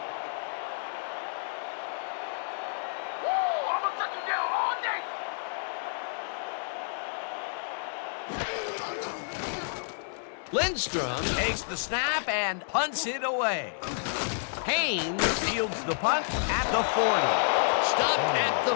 Woo! I'm gonna shut you down all day! Lindstrom takes the snap and punts it away. Haynes fields the punt at the 40. Stopped at the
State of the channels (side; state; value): right; silent; 58 dB below the other